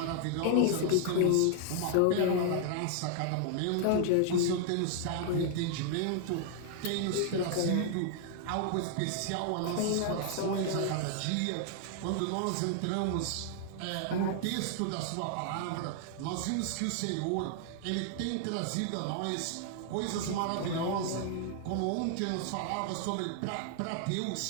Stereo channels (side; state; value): both; different; correlation 0.00